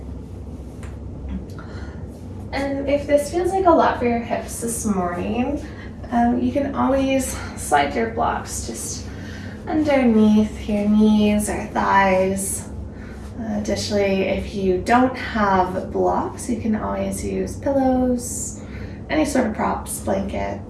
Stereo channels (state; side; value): identical; both; correlation 1.00